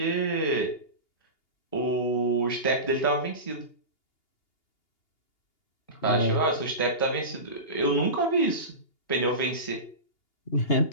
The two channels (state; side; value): late; right; 2.8 ms